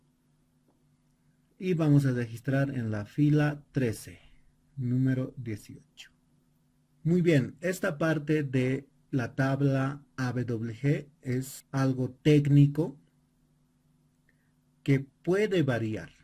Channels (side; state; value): both; identical; correlation 1.00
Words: Y vamos a registrar en la fila 13, número 18. Muy bien, esta parte de la tabla AWG es algo técnico que puede variar.